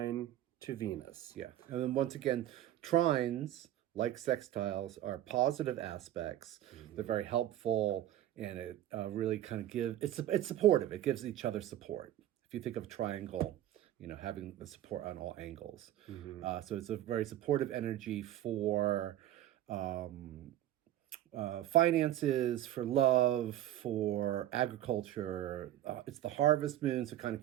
to Venus. Yeah, and then once again, trines, like sextiles, are positive aspects. They're very helpful, and it really kind of it's supportive. It gives each other support. If you think of a triangle, you know, having the support on all angles. So it's a very supportive energy for finances, for love, for agriculture. It's the harvest moon, so kind of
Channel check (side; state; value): left; quieter; 12.9 dB